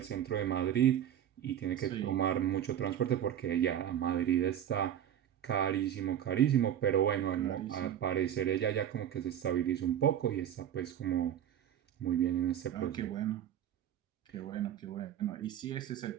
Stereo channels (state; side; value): quieter; left; 10.3 dB